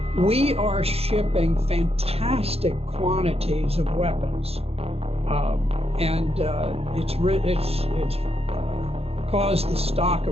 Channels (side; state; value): left; late; 0.29 ms